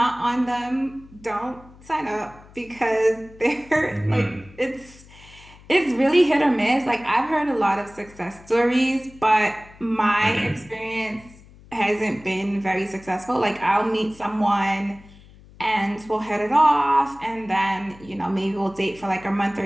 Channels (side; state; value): left; noise; hum, 23 dB below the sound